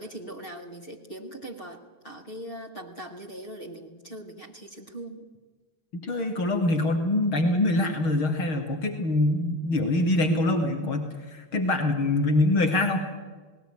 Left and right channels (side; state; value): right; late; 6.4 ms